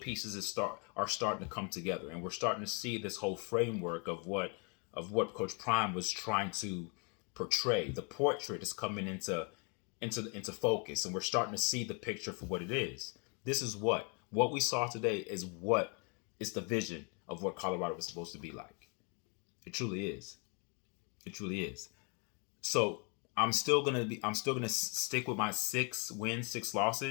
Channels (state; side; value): quieter; right; 34.9 dB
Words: are starting to come together, and we're starting to see this whole framework of what Coach Prime was trying to portray. The portrait is coming into focus, and we're starting to see the picture for what it is. This is what we saw today is what is the vision of what Colorado was supposed to be like. It truly is. It truly is. So I'm still gonna stick with my 6 wins, 6